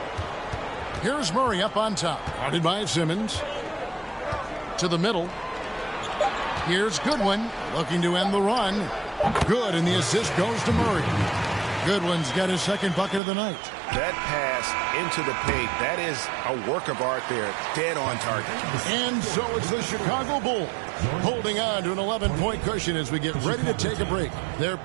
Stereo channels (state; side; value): drops out; left; at 13.2 s